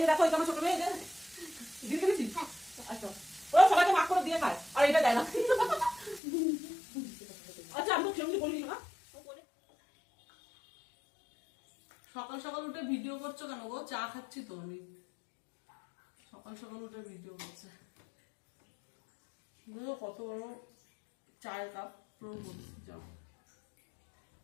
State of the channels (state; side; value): drops out; right; at 6.2 s